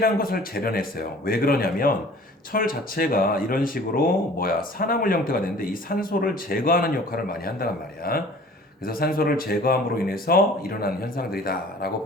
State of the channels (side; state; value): both; normal; correlation 0.48